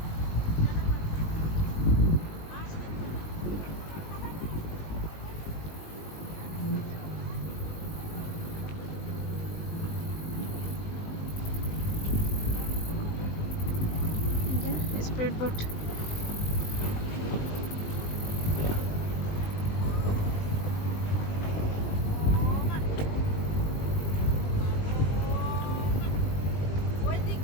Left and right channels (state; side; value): late; right; 19 ms